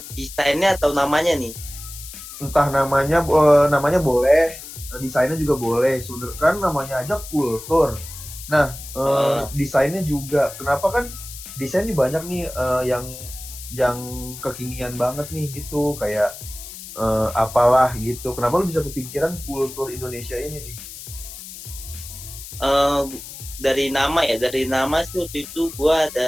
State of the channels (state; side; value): noise; left; hiss, 13 dB below the sound